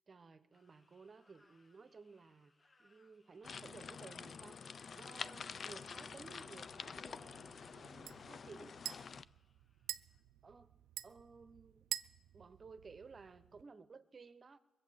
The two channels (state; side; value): normal; both; correlation 0.66